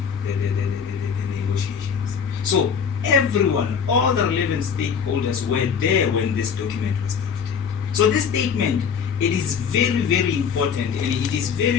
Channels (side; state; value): right; quieter; 6.8 dB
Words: the negotiations. So everyone, all the relevant stakeholders were there when this document was drafted. So this statement, it is very, very important, and it is